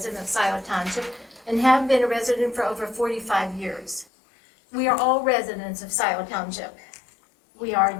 of Scio Township and have been a resident for over 45 years. We are all residents of Scio Township. We are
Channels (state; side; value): drops out; right; at 4.0 s